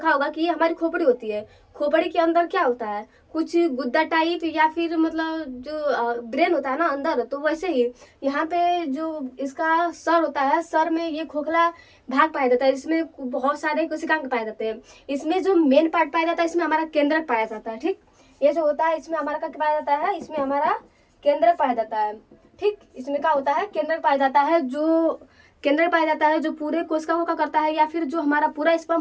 होगा कि ये हमारी खोपड़ी होती है। खोपड़ी के अंदर क्या होता है, कुछ गुद्दा टाइप या फिर मतलब जो ब्रेन होता है ना अंदर, तो वैसे ही यहाँ पे जो इसका सर होता है, सर में ये खोखला भाग पाया जाता है। इसमें बहुत सारे कोशिकांग पाए जाते हैं। इसमें जो मेन पार्ट पाया जाता है, इसमें हमारा केंद्रक पाया जाता है। ठीक, ये जो होता है इसमें हमारा क्या पाया जाता है, इसमें हमारा केंद्रक पाया जाता है। ठीक, इसमें क्या होता है, केंद्रक पाया जाता है। जो केंद्रक पाया जाता है जो पूरे कोशिका को क्या करता है, या फिर जो हमारा पूरा स्पर्म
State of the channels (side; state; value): both; identical; correlation 1.00